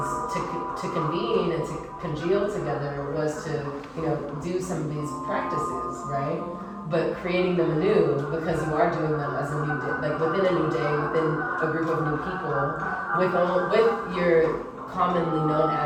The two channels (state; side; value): identical; both; correlation 1.00